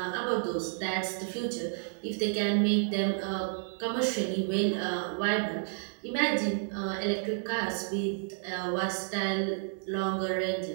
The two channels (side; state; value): left; silent; digital silence